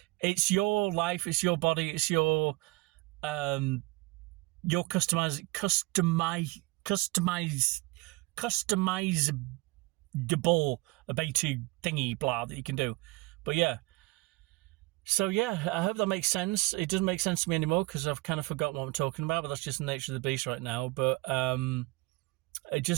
it's your life, it's your body, it's your customizable ability thingy blah that you can do. But yeah. So yeah, I hope that makes sense. It doesn't make sense to me anymore because I've kind of forgotten what I'm talking about, but that's just the nature of the beast right now. But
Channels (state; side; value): quieter; left; 23.7 dB